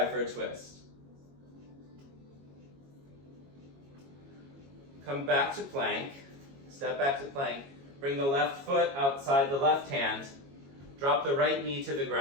for a twist. Come back to plank, step back to plank, bring the left foot outside the left hand, drop the right knee to the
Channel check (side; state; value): left; late; 22 ms